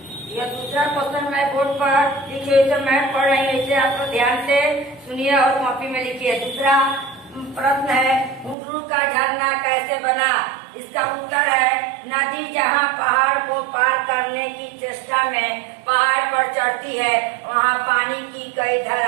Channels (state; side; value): drops out; left; at 8.6 s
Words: यह दूसरा क्वेश्चन मैं बोर्ड पर लिखी हुई तो मैं पढ़ रही हूँ, इसे आप लोग ध्यान से सुनिए और कॉपी में लिखिए। दूसरा प्रश्न है, हुंडरू का झरना कैसे बना? इसका उत्तर है, नदी जहाँ पहाड़ को पार करने की चेष्टा में पहाड़ पर चढ़ती है, वहाँ पानी की कई